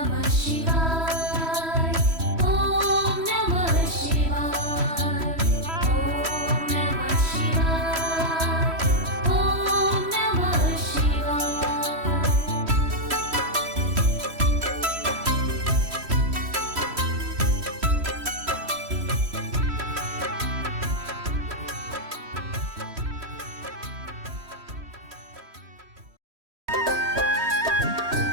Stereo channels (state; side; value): late; left; 3.1 ms